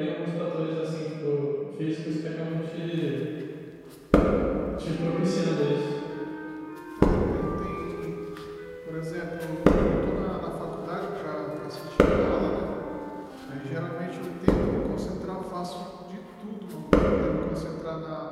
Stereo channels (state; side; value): identical; both; correlation 1.00